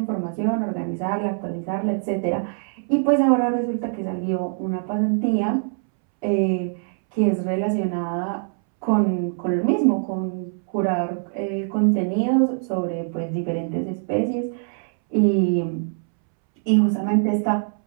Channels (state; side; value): silent; left; 63 dB below the other